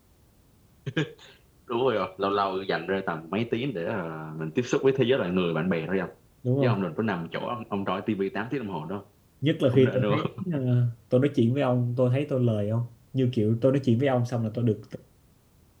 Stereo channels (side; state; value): both; identical; correlation 1.00